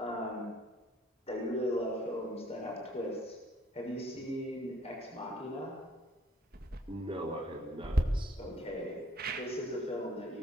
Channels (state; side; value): normal; both; correlation 0.61